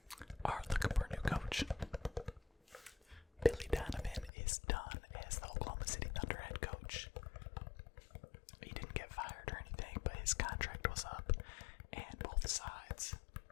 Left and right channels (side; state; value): right; drops out; at 4.3 s